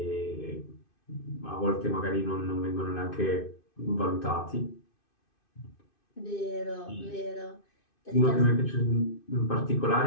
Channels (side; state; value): right; late; 2.5 ms